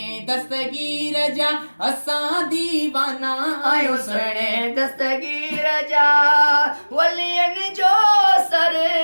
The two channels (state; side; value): inverted; both; correlation -1.00